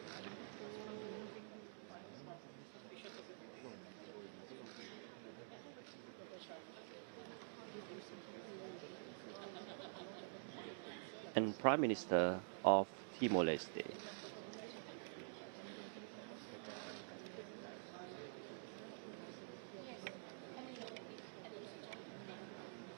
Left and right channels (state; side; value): silent; left; digital silence